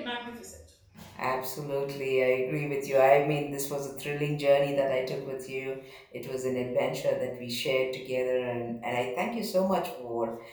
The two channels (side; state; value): both; identical; correlation 1.00